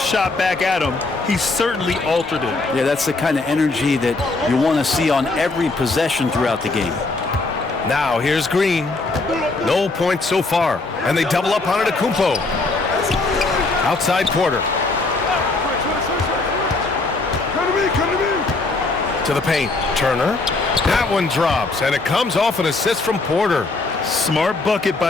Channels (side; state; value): right; quieter; 3.4 dB